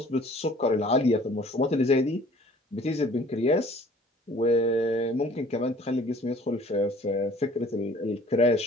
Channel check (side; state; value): both; normal; correlation 0.52